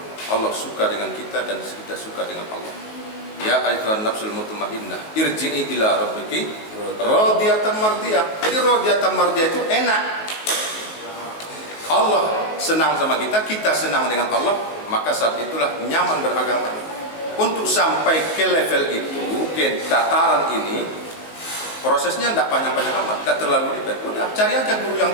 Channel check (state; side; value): late; right; 19 ms